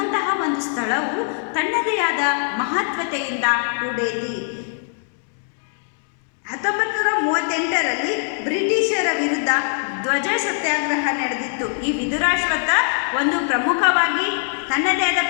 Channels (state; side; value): silent; right; 61 dB below the other